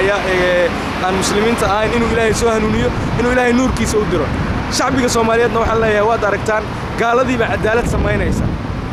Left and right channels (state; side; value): identical; both; correlation 1.00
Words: aan muslimiinta ahayn inuu ilaahay soo hanuuniyo inuu ilaahay nuurkiisa u diro shacbiga Soomaaliyeedna waxaan leeyahay waad aragtaan gaaladiiba cadaalad sameynaysa